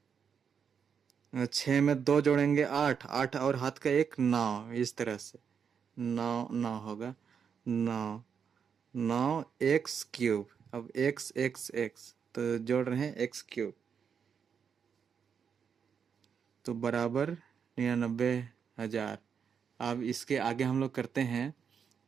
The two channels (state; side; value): quieter; left; 7.0 dB